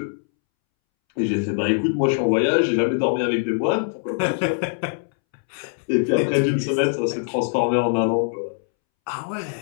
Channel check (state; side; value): silent; right; 64 dB below the other